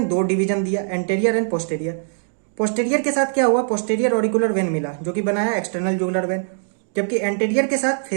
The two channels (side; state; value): left; silent; digital silence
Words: 2 division दिया, एंटेरियर एंड पोस्टेरियर। पोस्टेरियर के साथ क्या हुआ? पोस्टेरियर ऑरिकुलर वेन मिला, जो कि बनाया एक्सटर्नल जुगुलर वेन। जबकि एंटेरियर के साथ